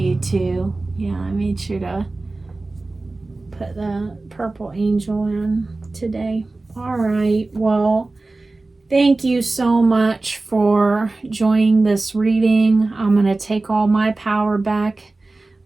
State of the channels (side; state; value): left; quieter; 3.2 dB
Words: too. Yeah, I made sure to put the purple angel in today. All right. Well, thank you so much for joining this reading. I'm going to take all my power back,